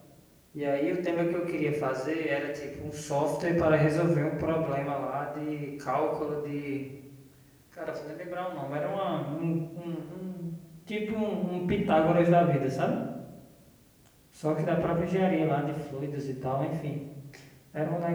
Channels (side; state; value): both; identical; correlation 1.00